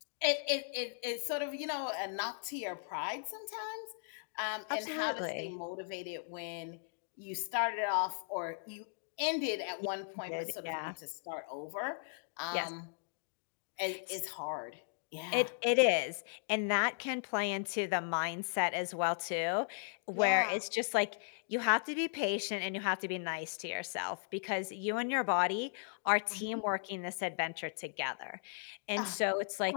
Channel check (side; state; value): right; silent; digital silence